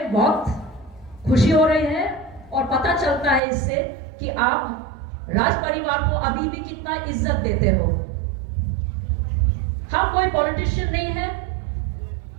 बहुत खुशी हो रही है और पता चलता है इससे कि आप राज परिवार को अभी भी कितना इज्जत देते हो। हम कोई पॉलिटिशियन नहीं है,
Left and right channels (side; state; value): left; drops out; at 3.4 s